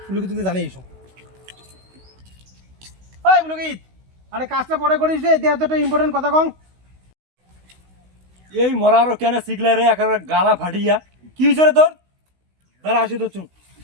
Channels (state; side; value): late; left; 16 ms